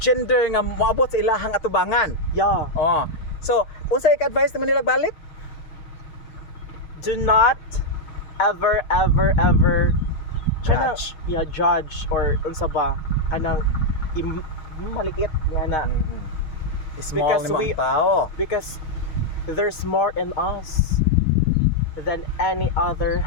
gender nga moabot sa ilahang atubangan. Yeah. Oh. So, unsa ik-advise naman nila balik? Do not ever kanang, Judge. yeah, judge or unsa ba kanang maliit nga na Small Because ni we- mga tao. because there's more in us than any other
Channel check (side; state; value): right; late; 6.4 ms